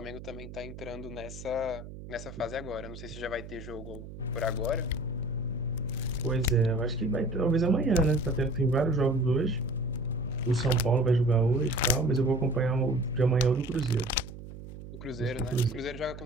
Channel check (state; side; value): noise; right; hum, 13 dB below the sound